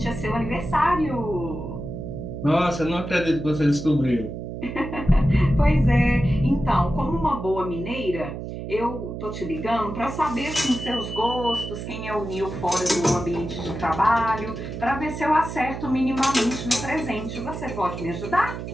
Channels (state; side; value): noise; right; hum, 7 dB below the sound